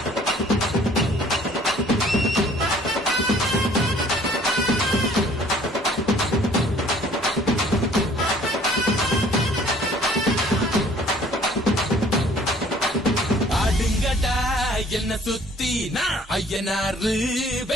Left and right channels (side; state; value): both; normal; correlation 0.55